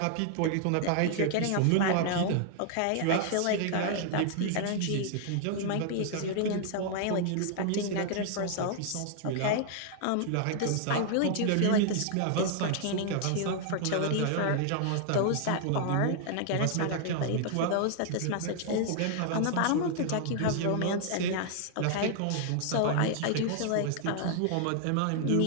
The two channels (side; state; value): both; different; correlation -0.01